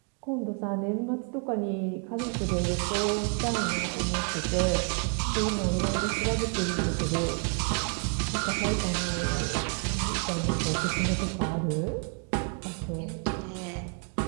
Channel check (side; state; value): left; quieter; 39.6 dB